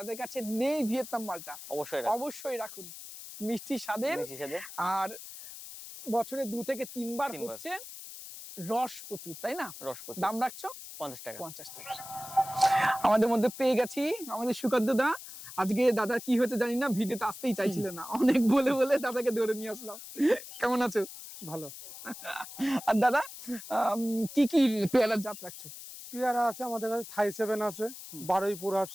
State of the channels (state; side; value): noise; left; hiss, 13 dB below the sound